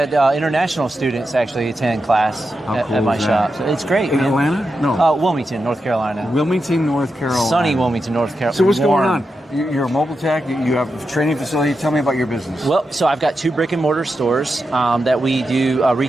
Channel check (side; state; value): both; normal; correlation 0.88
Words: international students actually attend class at my shop. So it's great. In Atlanta? No. Wilmington, North Carolina. Wilmington, North Carolina. Sunny Wilmington, North Carolina. So what's going on? You're a mobile tech. You have a training facility. Tell me about your business. Well, so I've got 2 brick and mortar stores that we do